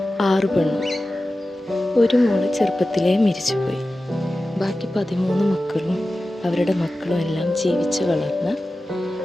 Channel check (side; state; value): both; normal; correlation 0.95